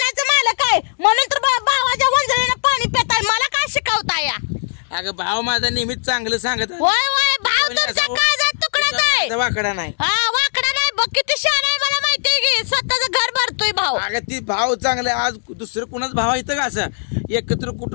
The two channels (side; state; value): right; silent; digital silence